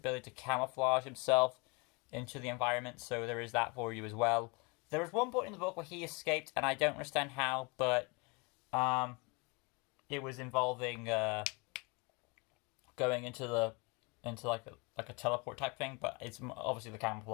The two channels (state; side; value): quieter; right; 28.7 dB